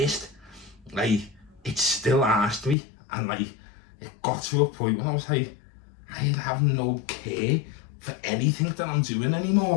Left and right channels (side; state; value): right; drops out; at 2.8 s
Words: Like, it still asked me. And like, it got to a point where I was like, I have no care for anything that I'm doing anymore.